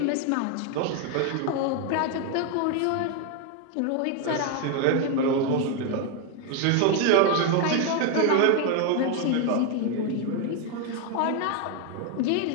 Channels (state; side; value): different; both; correlation 0.01